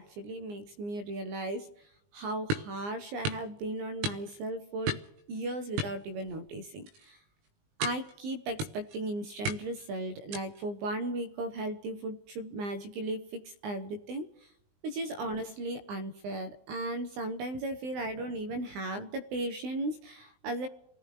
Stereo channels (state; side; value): late; left; 20 ms